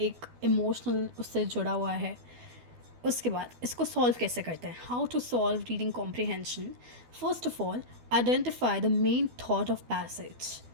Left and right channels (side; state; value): left; late; 12 ms